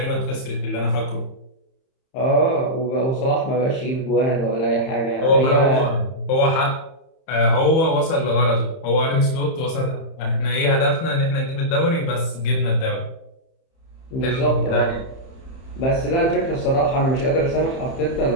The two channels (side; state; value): right; late; 31 ms